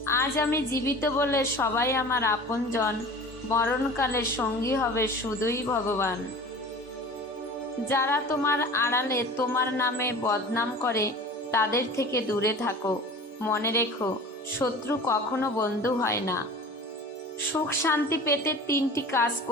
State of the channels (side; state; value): both; normal; correlation 0.39